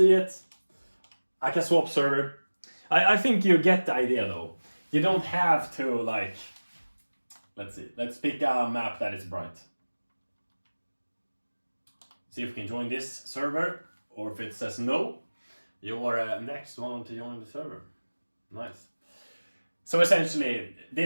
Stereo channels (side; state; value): both; inverted; correlation -1.00